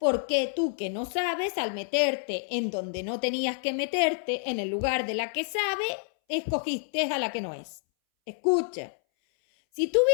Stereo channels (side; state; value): right; silent; 59 dB below the other